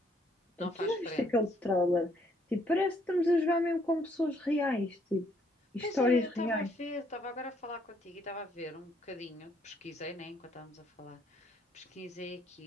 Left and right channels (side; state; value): both; normal; correlation 0.68